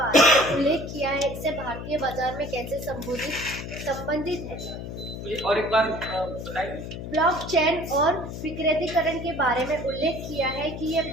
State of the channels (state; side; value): noise; left; hum, 8 dB below the sound